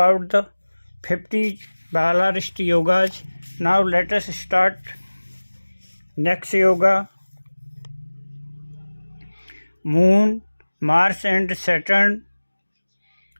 the 50 Balarist Yogas. Now let us start next yoga. Moon, Mars and Saturn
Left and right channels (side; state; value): both; inverted; correlation -1.00